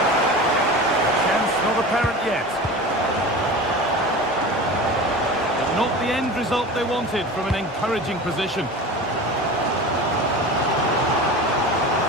Not apparent yet. But not the end result they wanted from an encouraging position.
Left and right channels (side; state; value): both; normal; correlation 0.33